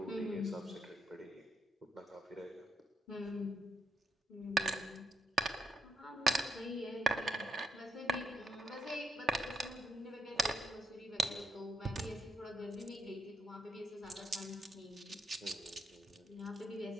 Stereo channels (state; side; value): normal; both; correlation 0.78